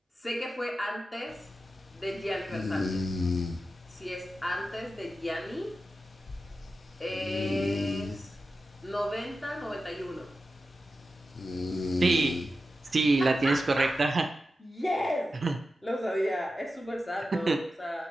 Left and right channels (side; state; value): both; normal; correlation 0.92